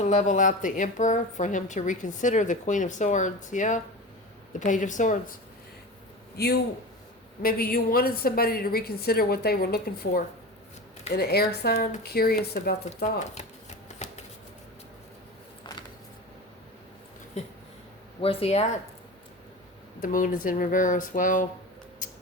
level out the Emperor for him to reconsider the Queen of Swords. Yeah. The Page of Swords. Maybe you wanted somebody to reconsider what they were looking for. In an air sign, curious about the thought. Where's he at? The Moon is in reverse. Well,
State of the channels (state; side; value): normal; both; correlation 0.30